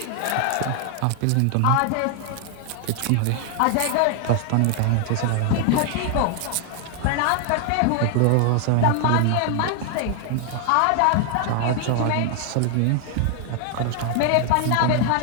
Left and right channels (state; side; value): different; both; correlation 0.00